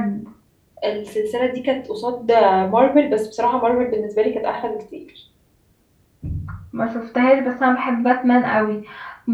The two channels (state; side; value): identical; both; correlation 1.00